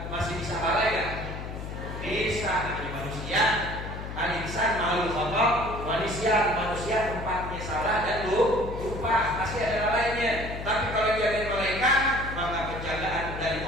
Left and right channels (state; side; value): noise; left; hum, 8 dB below the sound